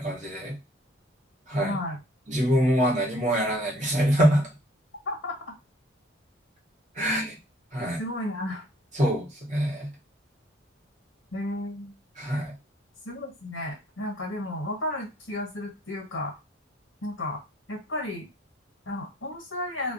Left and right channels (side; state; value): both; normal; correlation 0.59